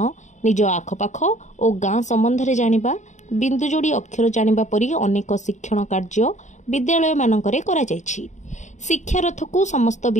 निज आखपाख और गाँ संबंध में जानिबा, बिंदु जोड़ी अक्षर जानिबा परी अनेक शिक्षण कार्य विद्यालय मानकरे करा जायछि। शिक्षारथ को समस्त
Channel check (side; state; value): right; late; 0.35 ms